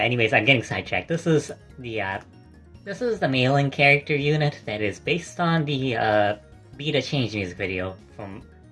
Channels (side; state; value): both; identical; correlation 1.00